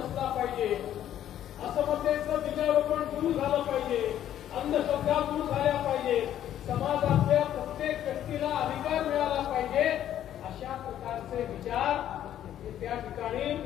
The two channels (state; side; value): quieter; right; 11.3 dB